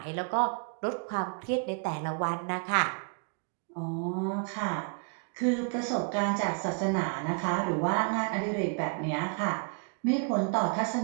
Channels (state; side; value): quieter; left; 38.0 dB